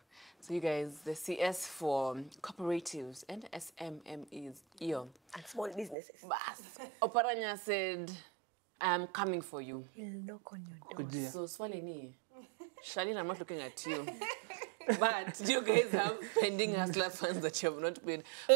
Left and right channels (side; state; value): left; drops out; at 6.0 s